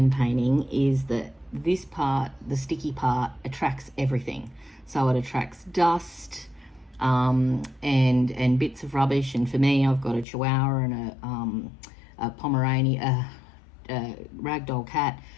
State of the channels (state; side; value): drops out; right; at 10.2 s